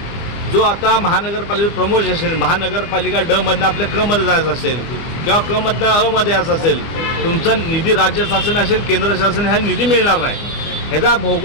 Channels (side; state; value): right; late; 24 ms